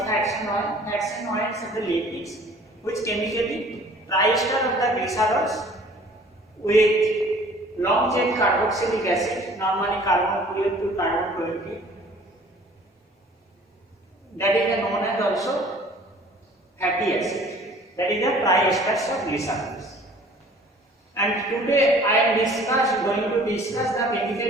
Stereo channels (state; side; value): normal; both; correlation 0.51